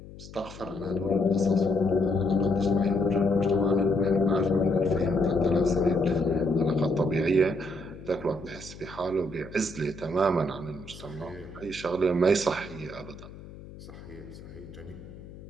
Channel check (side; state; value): left; noise; hum, 16 dB below the sound